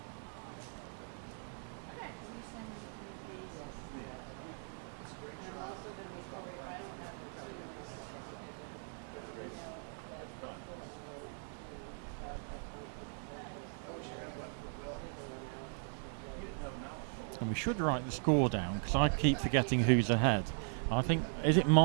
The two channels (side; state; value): left; silent; 52 dB below the other